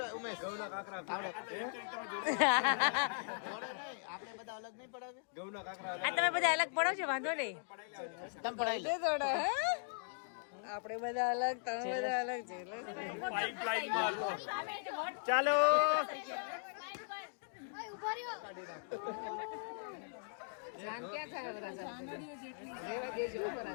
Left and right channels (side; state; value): right; silent; digital silence